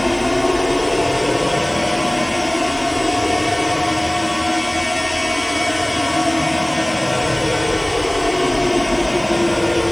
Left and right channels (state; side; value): noise; right; hiss, 29 dB below the sound